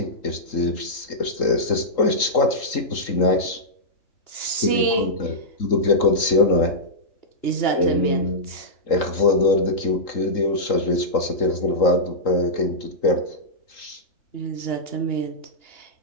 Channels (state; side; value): late; right; 3.8 ms